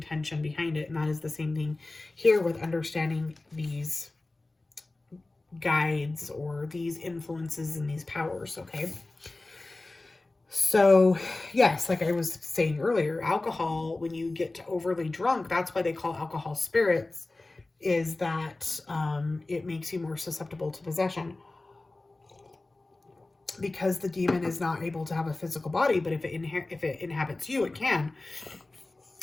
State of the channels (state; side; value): quieter; right; 3.0 dB